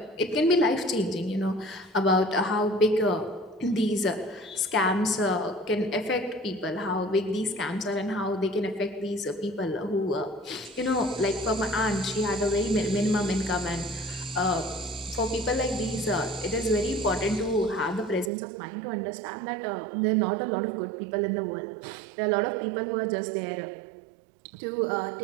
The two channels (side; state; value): left; drops out; at 18.3 s